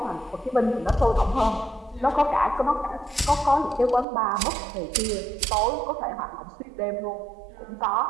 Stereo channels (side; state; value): left; drops out; at 4.0 s